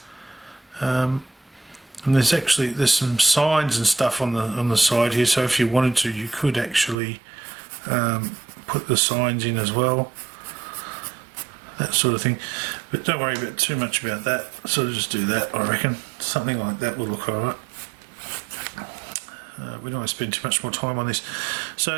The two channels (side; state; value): left; drops out; at 7.0 s